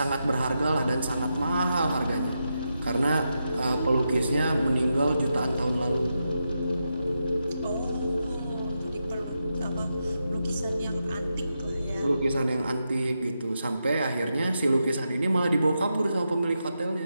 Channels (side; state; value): both; inverted; correlation -0.86